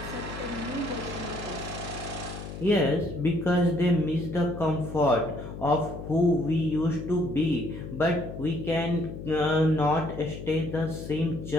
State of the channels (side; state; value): left; noise; hum, 10 dB below the sound